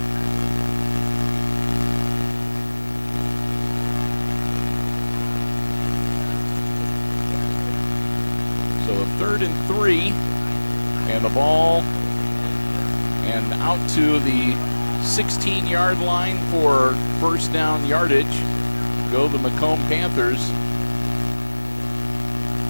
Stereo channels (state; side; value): inverted; both; correlation -1.00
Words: So a 3rd and 3, and the ball and out to the 16-yard line for first down yardage. Go the McComb Panthers.